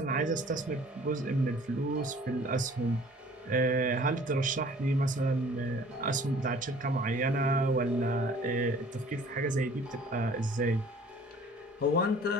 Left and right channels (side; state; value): both; normal; correlation 0.51